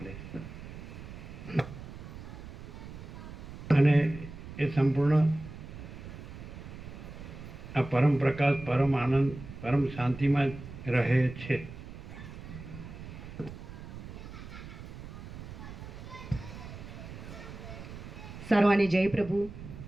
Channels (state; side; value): noise; right; rumble, 12 dB below the sound